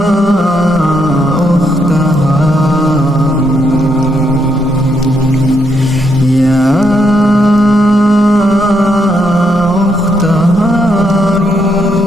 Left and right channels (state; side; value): normal; both; correlation 0.77